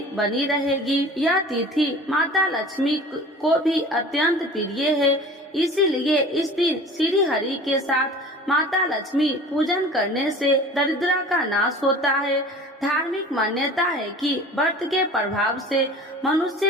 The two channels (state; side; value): normal; both; correlation 0.41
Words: बनी रहेगी। यह तिथि माता लक्ष्मी को भी अत्यंत प्रिय है, इसीलिए इस दिन श्री हरि के साथ माता लक्ष्मी पूजन करने से दरिद्रता का नाश होता है। धार्मिक मान्यता है कि व्रत के प्रभाव से